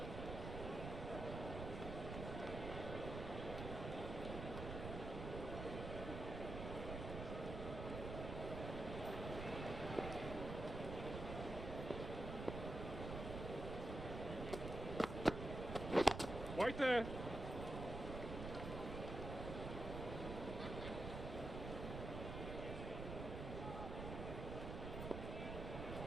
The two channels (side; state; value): right; noise; rumble, 5 dB below the sound